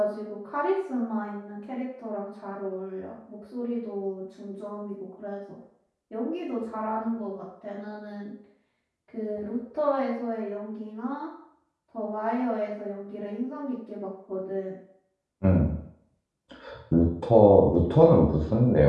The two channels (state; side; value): identical; both; correlation 1.00